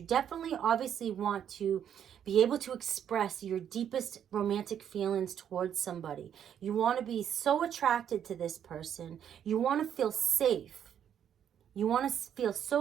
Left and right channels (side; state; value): left; quieter; 9.2 dB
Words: definitely obviously want to be able to express your deepest romantic feelings towards somebody. You want to be so attracted to this person. You want to feel safe. You want to feel